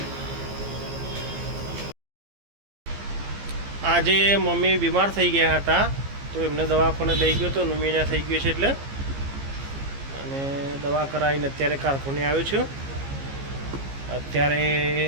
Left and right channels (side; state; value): left; late; 15 ms